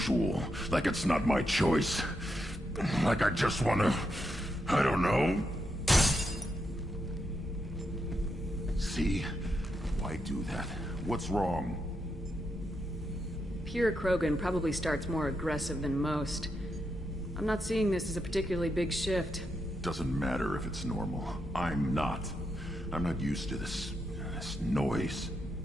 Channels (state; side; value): normal; both; correlation 0.83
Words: Like it's not my choice. Like I just want to... I don't know. See? Why do that? What's wrong? Pure Krogan probably starts more aggressive than most. I'm not seeing this as a particularly big shift. Doesn't matter if it's normal. I'm not. I'm not used to this noise.